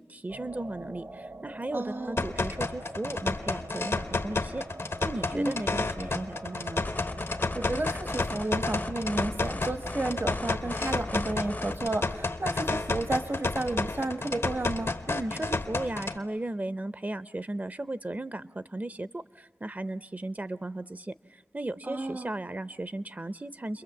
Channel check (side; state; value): both; normal; correlation 0.81